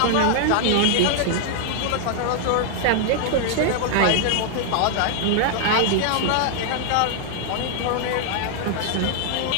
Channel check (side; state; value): both; different; correlation 0.00